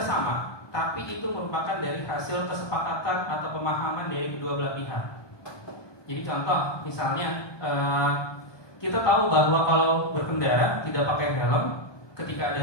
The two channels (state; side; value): late; right; 1.2 ms